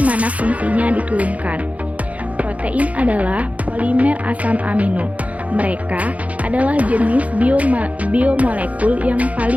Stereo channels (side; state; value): left; late; 0.068 ms